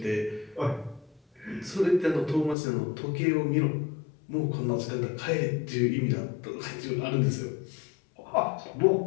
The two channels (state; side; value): drops out; right; at 2.6 s